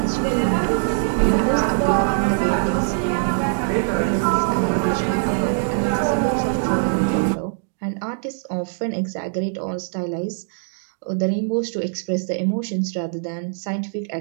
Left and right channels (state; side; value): silent; left; digital silence